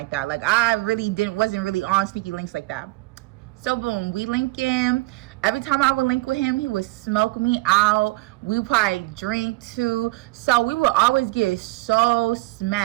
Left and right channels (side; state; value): left; quieter; 22.3 dB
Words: that. Like I really wasn't really on sneaky links like that. So boom, we link in. Every time I would link with him, he would smoke me out. We would probably drink too. So we would always get so